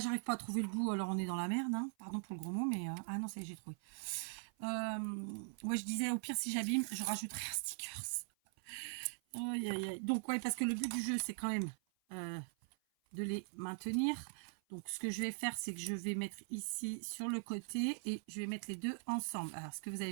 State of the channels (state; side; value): silent; left; 50 dB below the other